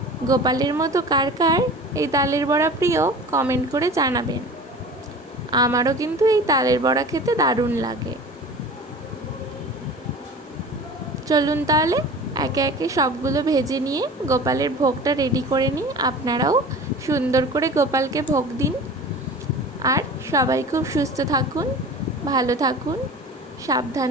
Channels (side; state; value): both; normal; correlation 0.38